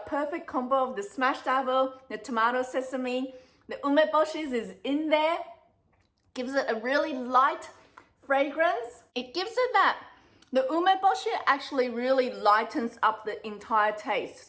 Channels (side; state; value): both; identical; correlation 1.00